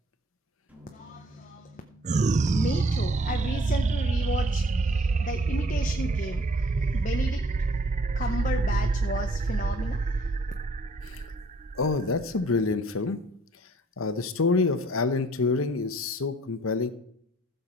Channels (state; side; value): normal; both; correlation 0.59